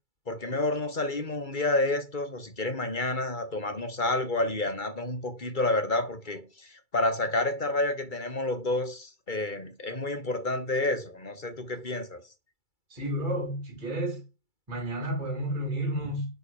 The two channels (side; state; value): right; late; 2.3 ms